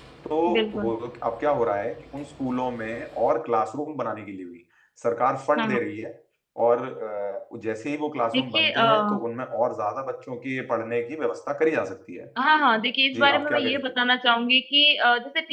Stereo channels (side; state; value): both; identical; correlation 1.00